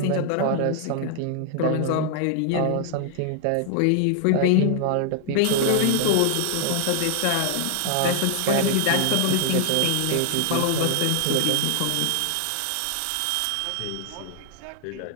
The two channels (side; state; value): both; different; correlation 0.00